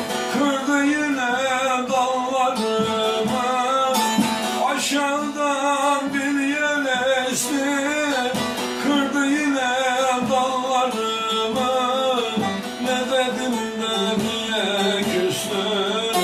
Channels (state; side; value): identical; both; correlation 1.00